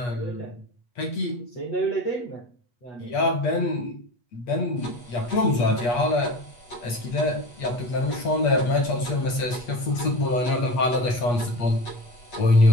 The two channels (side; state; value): right; late; 8.4 ms